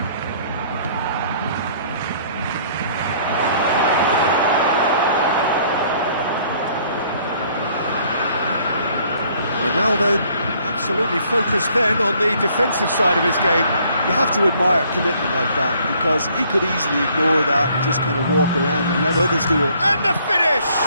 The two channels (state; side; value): inverted; both; correlation -0.61